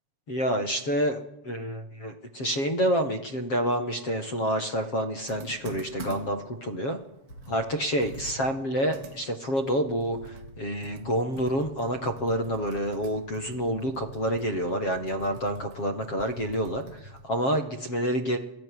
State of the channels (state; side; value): late; right; 7.4 ms